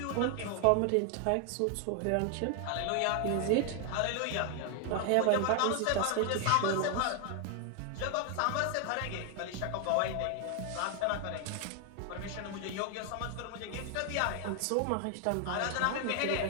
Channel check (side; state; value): both; different; correlation 0.00